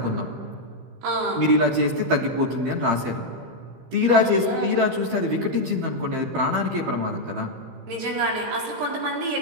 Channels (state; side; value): late; left; 15 ms